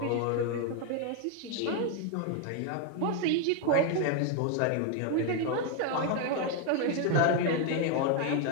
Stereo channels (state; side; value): different; both; correlation 0.01